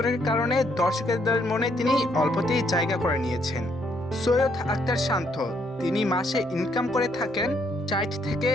কারণে দর্শকদের মনে তিনি অল্পতেই জায়গা করে নিয়েছেন। সৈয়দ আখতার শান্ত তিনি মাসে ইনকাম করে থাকেন 60 থেকে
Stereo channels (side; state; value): both; normal; correlation 0.71